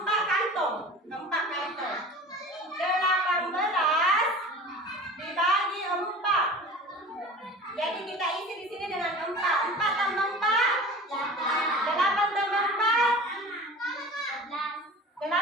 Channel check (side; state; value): both; normal; correlation 0.38